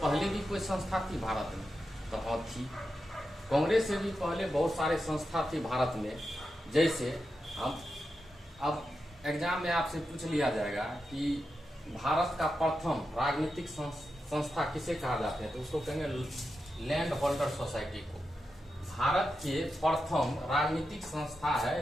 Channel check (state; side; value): normal; both; correlation 0.89